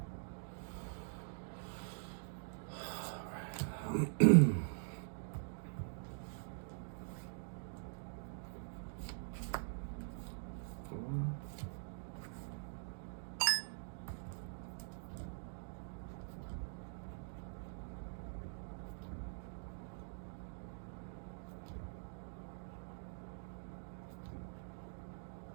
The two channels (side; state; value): left; silent; digital silence